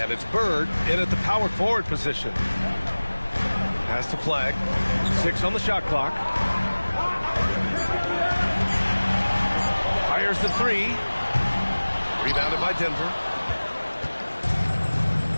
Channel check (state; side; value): inverted; both; correlation -1.00